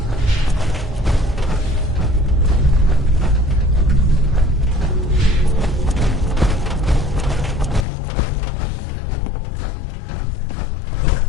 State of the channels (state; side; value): drops out; right; at 7.9 s